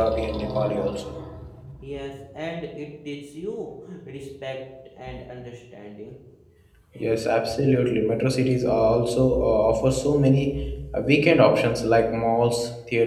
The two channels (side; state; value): both; identical; correlation 1.00